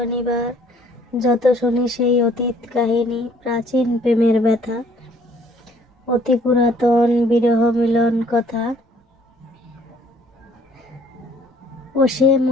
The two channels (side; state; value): both; normal; correlation 0.60